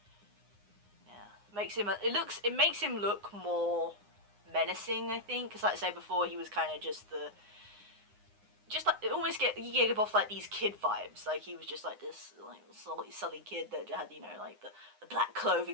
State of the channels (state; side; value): late; left; 9.7 ms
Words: Yeah, makes him. It makes him look more menacing, I think, because like I said before, he was kind of just like you give off like these kid vibes. Like he was just like this like sully kid that had, you know, like the black